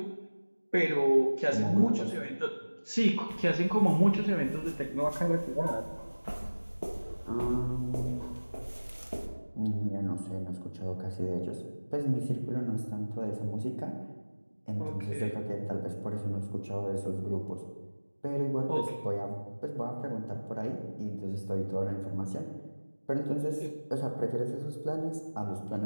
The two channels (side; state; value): both; inverted; correlation -1.00